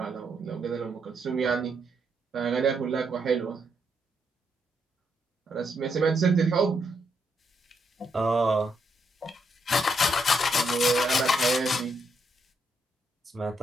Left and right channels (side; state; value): both; normal; correlation 0.78